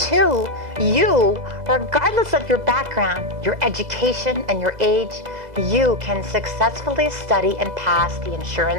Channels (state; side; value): late; left; 2.0 ms